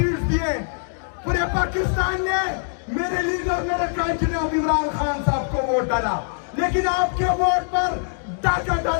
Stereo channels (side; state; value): right; silent; 64 dB below the other